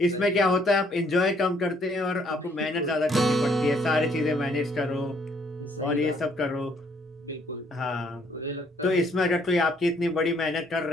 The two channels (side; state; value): both; normal; correlation 0.66